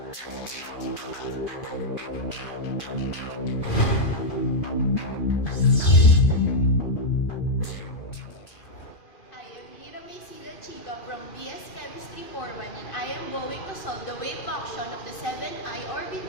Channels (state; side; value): late; right; 2.4 ms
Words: BS Chemistry 41, and I am going to solve the wave function of the 7i